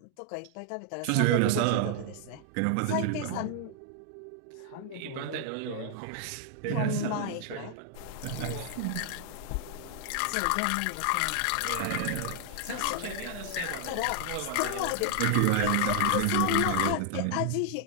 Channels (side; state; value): both; different; correlation 0.00